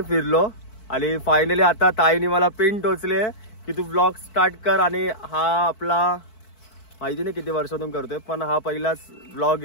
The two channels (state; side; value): late; right; 4.6 ms